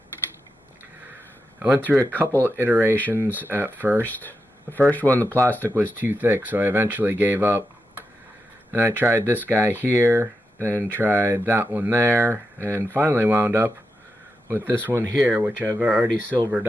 I went through a couple iterations at first. The first one, the plastic was too thick, so I eventually gave up. And I tried this guy here, then tried that one there, and finally wound up with this one here, which I've already silvered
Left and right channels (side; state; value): both; normal; correlation 0.88